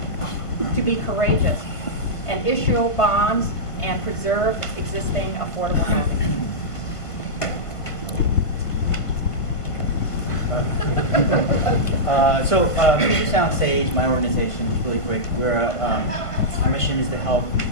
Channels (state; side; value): late; right; 1.5 ms